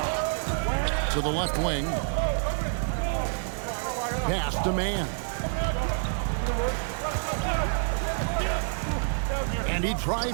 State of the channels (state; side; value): silent; left; digital silence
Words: To the left wing. Pass to man. And he